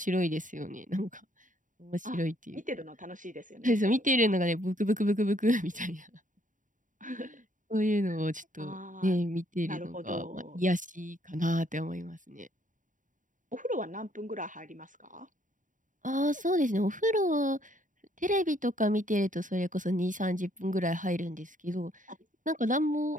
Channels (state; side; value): late; left; 0.38 ms